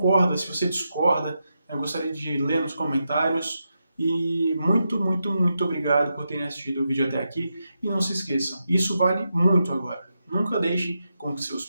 se você discorda, eu gostaria de ler nos comentários. E muito, muito, muito obrigado por terem assistido o vídeo até aqui. E não se esqueçam, isso vale muito agora. Nunca deixe com que seus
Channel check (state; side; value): inverted; both; correlation -0.86